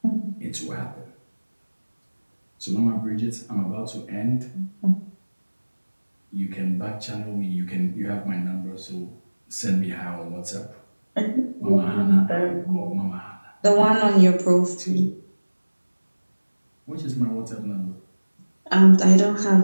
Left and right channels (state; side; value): inverted; both; correlation -1.00